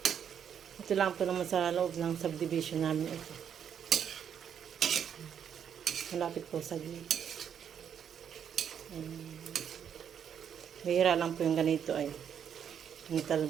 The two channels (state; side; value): quieter; left; 8.4 dB